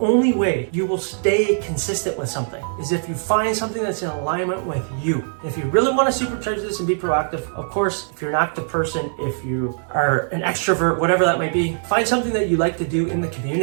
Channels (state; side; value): silent; left; digital silence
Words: way you will stay consistent with something, is if you find something that's in alignment with you. If you really want to supercharge this and be proactive, of course, if you're an active person, if you are an extrovert, whatever that might be, find something that you like to do in the